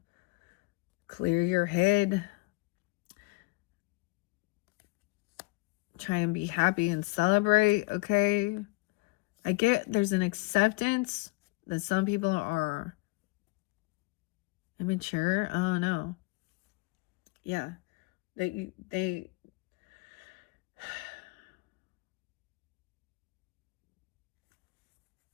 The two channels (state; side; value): quieter; right; 26.4 dB